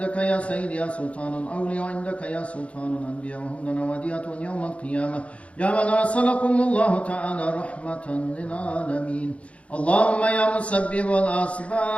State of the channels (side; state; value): right; late; 0.063 ms